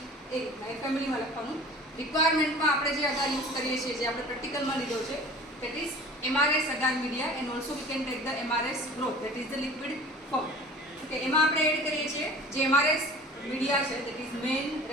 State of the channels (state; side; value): normal; both; correlation 0.43